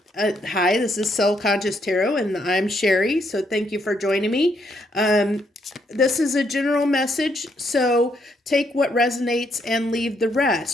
this is Soul Conscious Tarot, and I'm Sherry. So thank you for joining me. This is a general message, so take what resonates and leave the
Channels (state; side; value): normal; both; correlation 0.74